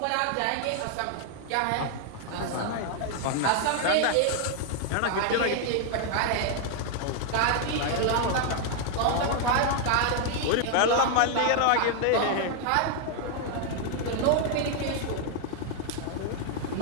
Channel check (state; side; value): different; both; correlation 0.00